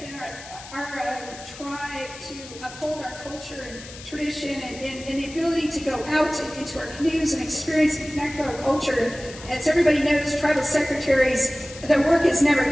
our tribe to uphold our culture and tradition and the ability to go out into our canoes and experience and connect with our culture. As everybody knows, tribal secretaries, their work is never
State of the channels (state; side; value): noise; left; hiss, 16 dB below the sound